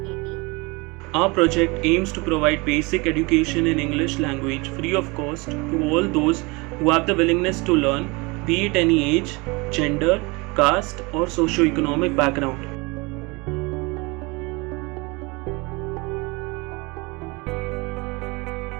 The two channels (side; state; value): left; quieter; 26.6 dB